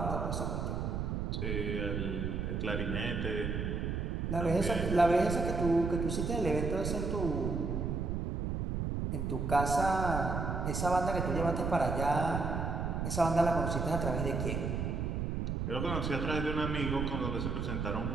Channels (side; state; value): right; noise; rumble, 1 dB below the sound